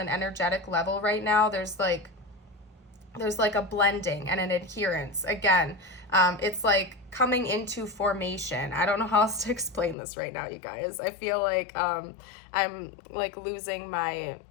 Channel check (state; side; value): drops out; right; at 10.0 s